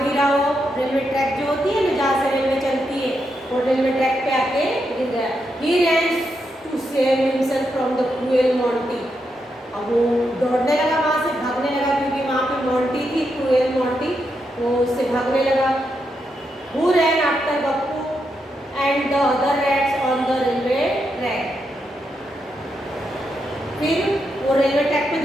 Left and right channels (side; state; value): both; normal; correlation 0.83